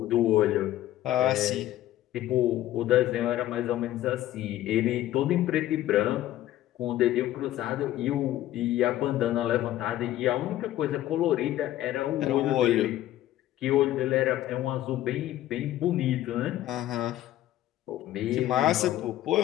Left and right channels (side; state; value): right; quieter; 13.8 dB